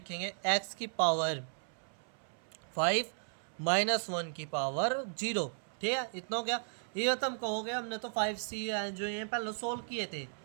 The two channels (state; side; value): silent; left; 54 dB below the other